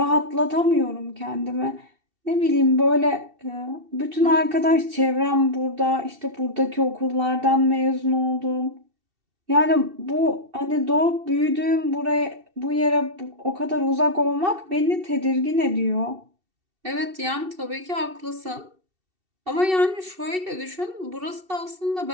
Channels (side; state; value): left; late; 2.7 ms